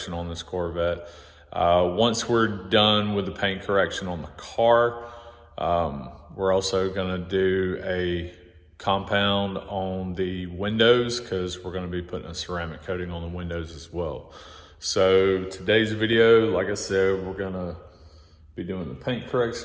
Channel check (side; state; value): both; identical; correlation 1.00